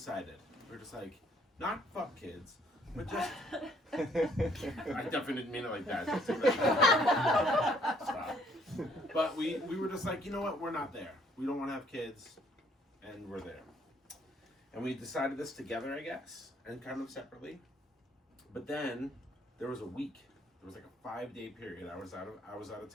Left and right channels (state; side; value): normal; both; correlation 0.64